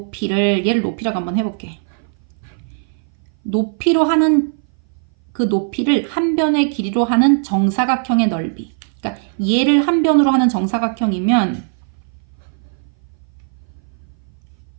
얘를 높이라고 한번 해볼게. 높이로 하는 그 높이를 한 변의 길이로 하는 정사각형의 넓이. 그러니까 얘를 한 변으로 하는 정사각형이면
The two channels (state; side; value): silent; left; 59 dB below the other